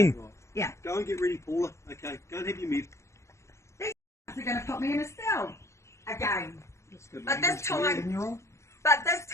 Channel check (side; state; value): right; late; 0.14 ms